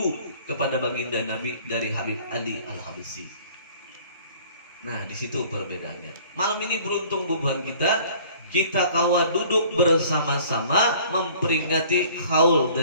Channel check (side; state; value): both; inverted; correlation -0.51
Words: kepada baginda Nabi dari Habib Ali Al-Habsyi. Nah, di situ perbedaannya. Malam ini beruntung bubuhan kita kawa duduk bersama-sama memperingati haul